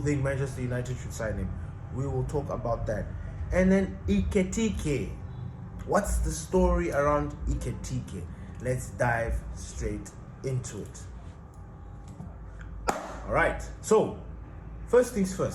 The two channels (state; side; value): identical; both; correlation 1.00